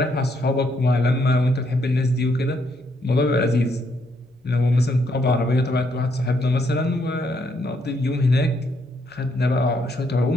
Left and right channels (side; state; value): both; normal; correlation 0.74